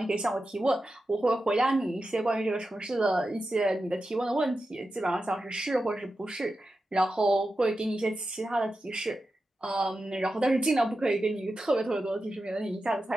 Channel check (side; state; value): both; normal; correlation 0.91